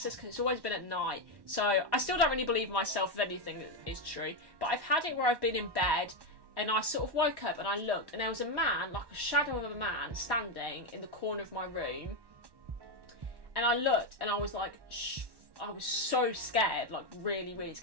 because it's always been at night. So I still don't really believe myself if anything is true. But I've had it where I've been in bed and I sort of woke up and I looked and there was a man, like a shadow of a man, standing in the corner of my room. And I looked and I was like, shh. I was so scared, like really, really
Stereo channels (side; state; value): left; late; 1.1 ms